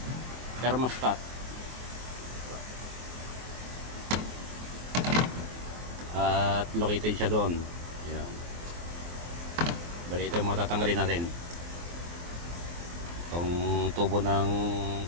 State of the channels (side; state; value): left; late; 23 ms